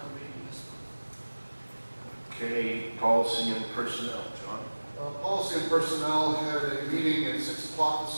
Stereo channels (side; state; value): both; inverted; correlation -1.00